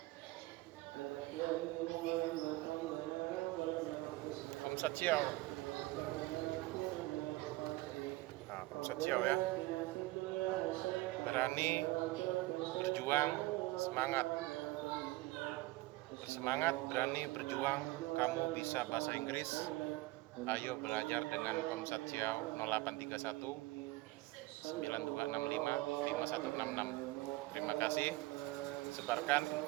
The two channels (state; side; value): quieter; left; 19.6 dB